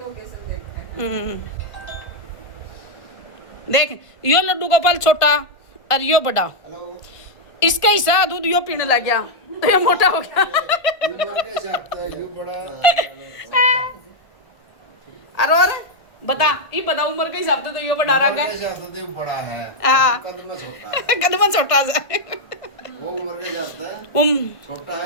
देख यो लड्डू गोपाल छोटा और यो बड़ा, इसका हिस्सा दूध यो पीने लग गया तो ये मोटा हो गया। अरे और बता ये बता उम्र के हिसाब से तो यो बड़ा रंग है। बड़ा है हाँ कदम छोटा सा वो उम्र के हिसाब से छोटा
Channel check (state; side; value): late; right; 1.4 ms